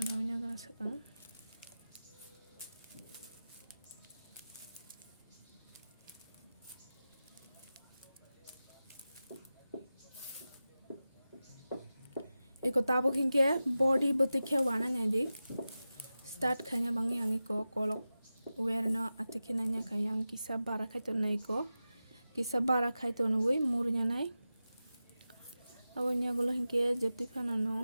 gana sekarang. Iko tabuk hingke body betikhe wana nyadi start khanya bangi angi ko kolok wear no atike nanya kayang kisa bara khaito nai ko kisa bara khaito nui murnya nai abonya gulo hingke jepti khana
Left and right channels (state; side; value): inverted; both; correlation -0.94